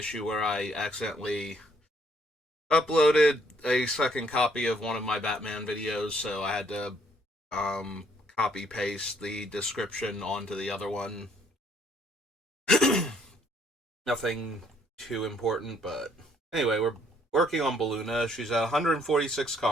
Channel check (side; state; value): both; normal; correlation 0.66